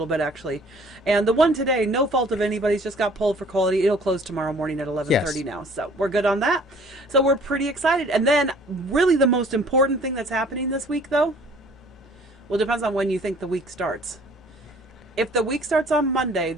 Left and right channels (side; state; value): both; normal; correlation 0.53